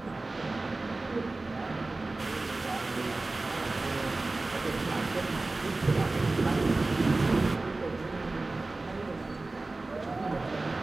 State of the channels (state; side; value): quieter; left; 3.2 dB